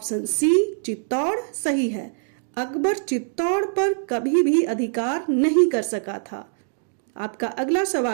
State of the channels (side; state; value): left; silent; digital silence